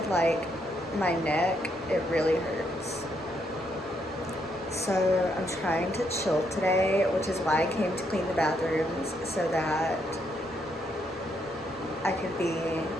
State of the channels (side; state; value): both; normal; correlation 0.76